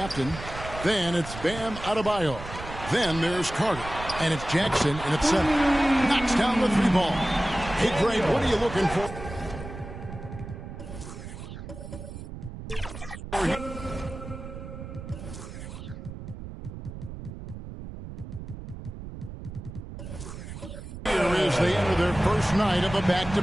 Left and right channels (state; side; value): noise; right; rumble, 11 dB below the sound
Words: Then it's Bam Adebayo. Then there's Carter, and it's Jackson in at 7. Knocks down the 3 ball. Hey, Greg, what are you looking for? They enter their first night of a